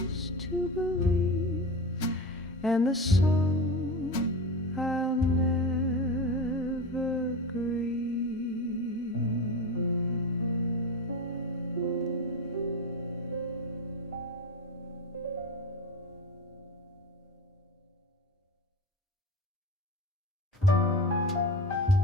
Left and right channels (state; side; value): normal; both; correlation 0.25